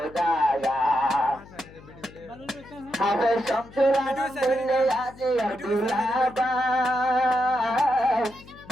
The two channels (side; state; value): left; noise; hum, 21 dB below the sound